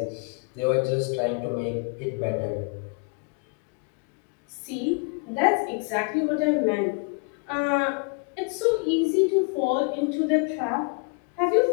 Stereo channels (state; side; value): quieter; right; 34.9 dB